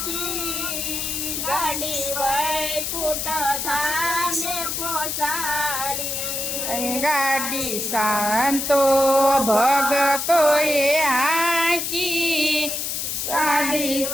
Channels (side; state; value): left; noise; hiss, 2 dB below the sound